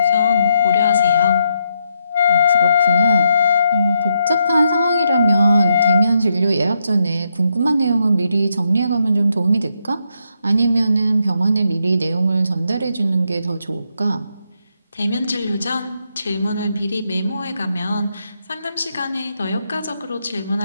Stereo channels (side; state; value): both; inverted; correlation -0.79